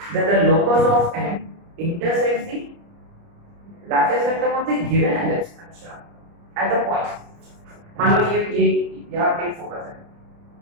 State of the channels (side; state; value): left; late; 29 ms